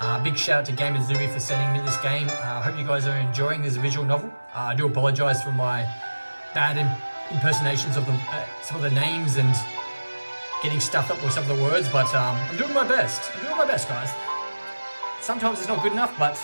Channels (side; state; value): both; inverted; correlation -1.00